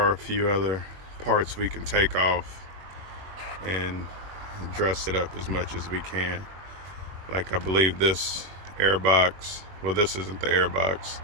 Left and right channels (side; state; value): left; late; 21 ms